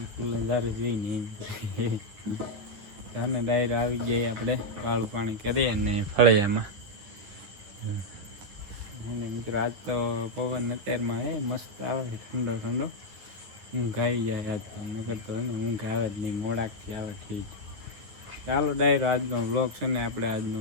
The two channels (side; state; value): left; late; 10 ms